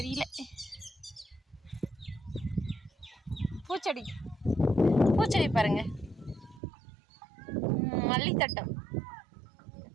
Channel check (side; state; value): left; drops out; at 6.6 s